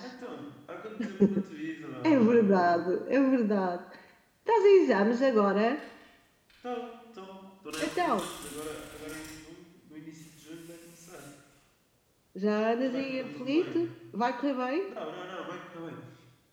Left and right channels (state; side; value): identical; both; correlation 1.00